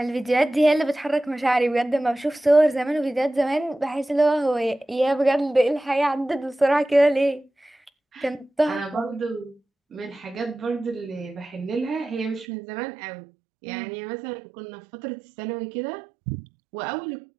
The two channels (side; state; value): left; drops out; at 12.5 s